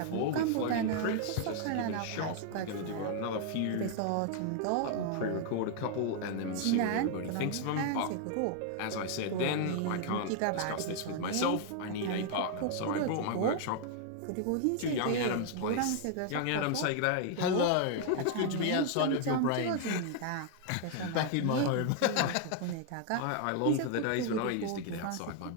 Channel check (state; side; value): different; both; correlation 0.00